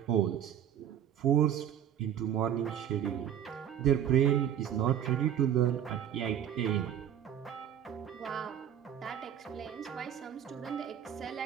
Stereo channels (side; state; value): left; quieter; 9.8 dB